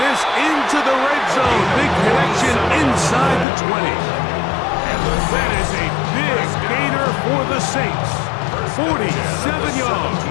into the red zone. Big connection inside the 20. And that is a big gainer for the Saints. 47 yards.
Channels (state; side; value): drops out; right; at 3.5 s